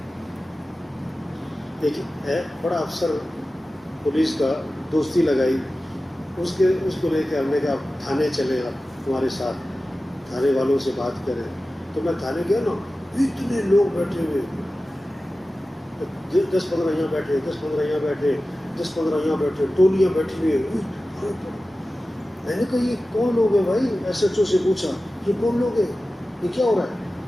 ایک بڑا افسر پولیس کا دوستی لگائی, اس کو لے کے ہم نے کہا تھانے چلے آپ ہمارے ساتھ، تھانے والوں سے بات کریں. تو میں تھانے گیا نا، اتنے لوگ بیٹھے ہوئے، 10-15 یہاں بیٹھے، 10-15 یہاں بیٹھے، 10-15 یہاں بیٹھے، ٹولیاں بیٹھی ہوئی. میں نے کہا یہ کون لوگ ہیں بھائی؟ ایس ایچ او سے پوچھا یہ کون لوگ ہیں، یہ کیا ہو رہا ہے؟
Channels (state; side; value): normal; both; correlation 0.95